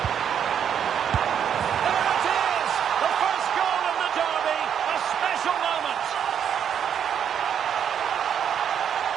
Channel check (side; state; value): left; quieter; 8.5 dB